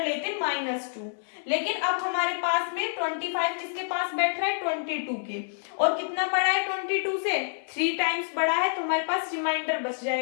-2। लेकिन अब हमारे पास में 25 किसके पास बैठ रहा है 22 के, और कितना बड़ा है 22 से 3 टाइम्स बड़ा है, तो हमारे पास रिमाइंडर बच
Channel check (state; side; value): silent; right; 60 dB below the other